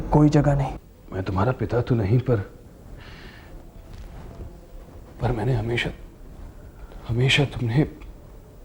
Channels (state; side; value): identical; both; correlation 1.00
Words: कोई जगह नहीं। मैं तुम्हारा पिता तो नहीं, पर मैंने हमेशा तुम्हें